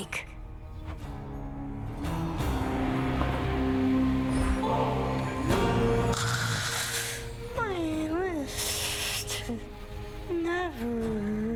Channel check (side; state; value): both; identical; correlation 1.00